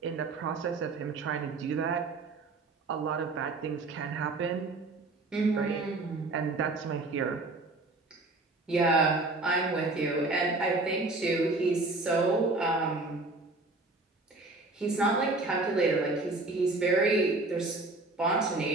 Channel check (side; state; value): left; quieter; 3.2 dB